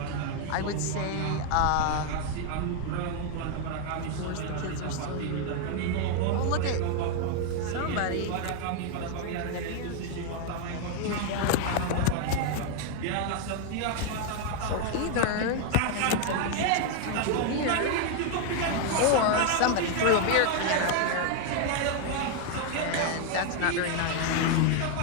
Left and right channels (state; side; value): different; both; correlation 0.00